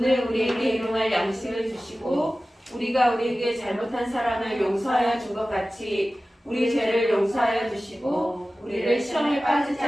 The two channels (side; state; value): both; normal; correlation 0.96